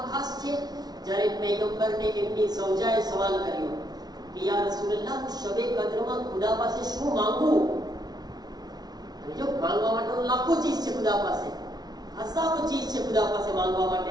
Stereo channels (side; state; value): left; late; 0.19 ms